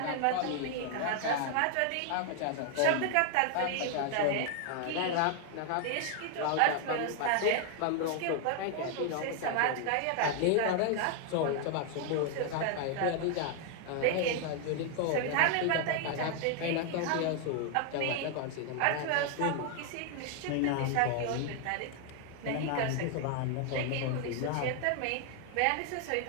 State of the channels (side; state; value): both; different; correlation 0.00